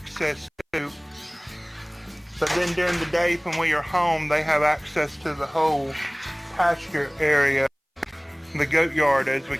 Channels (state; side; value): identical; both; correlation 1.00